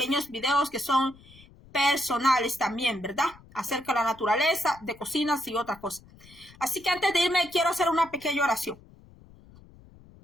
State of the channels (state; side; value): noise; left; rumble, 24 dB below the sound